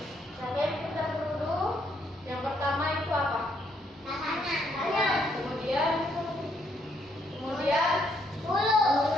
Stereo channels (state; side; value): normal; both; correlation 0.72